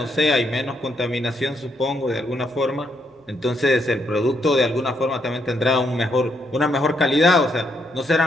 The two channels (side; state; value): both; normal; correlation 0.76